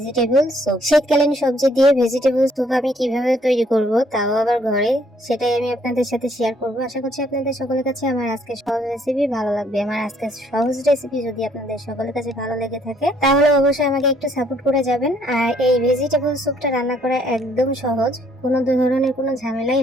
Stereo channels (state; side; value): normal; both; correlation 0.66